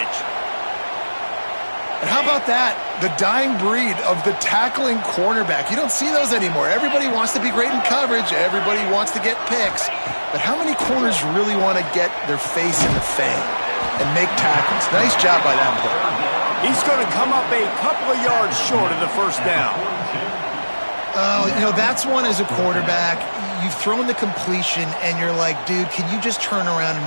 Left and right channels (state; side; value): inverted; both; correlation -1.00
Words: And how about that? The dying breed of the tackling cornerback. You don't see those anymore. Everybody wants to be great in coverage. Everybody wants to get picks. But how many corners really want to get their face in the fan and make tackles? Nice job by that player. He's going to come up a couple of yards short of the 1st down. Oh, you know, that's one as a quarterback. You've thrown the completion, and you're like, dude, can you just turn around and